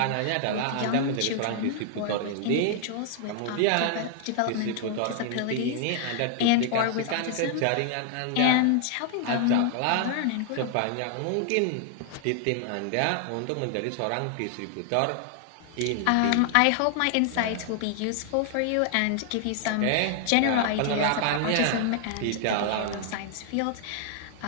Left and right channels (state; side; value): different; both; correlation 0.00